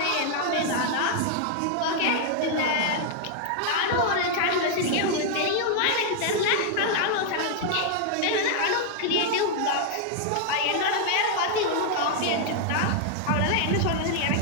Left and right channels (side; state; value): both; different; correlation 0.00